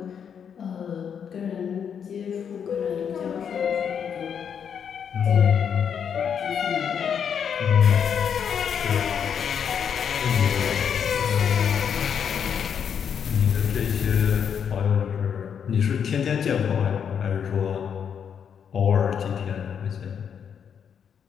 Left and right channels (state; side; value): quieter; right; 7.7 dB